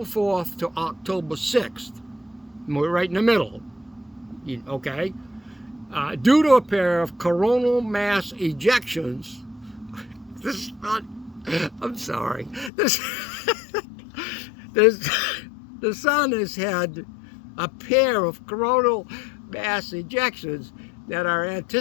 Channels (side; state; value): right; drops out; at 12.7 s